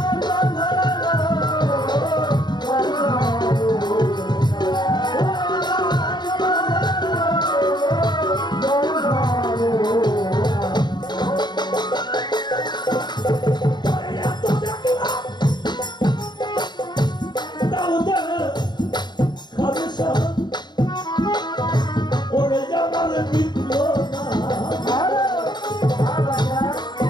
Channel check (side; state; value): right; late; 0.21 ms